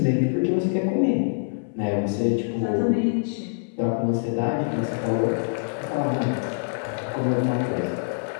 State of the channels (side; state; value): right; silent; 58 dB below the other